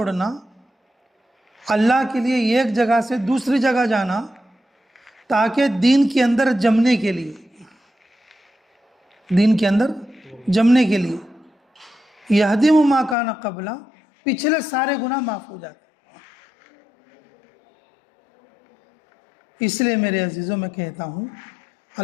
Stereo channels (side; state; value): right; drops out; at 13.2 s